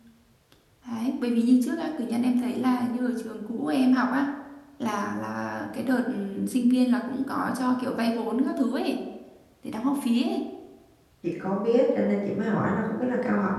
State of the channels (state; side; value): identical; both; correlation 1.00